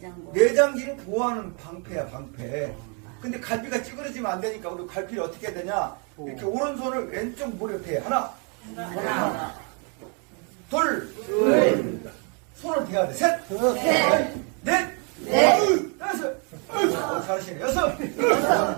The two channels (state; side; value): quieter; left; 37.8 dB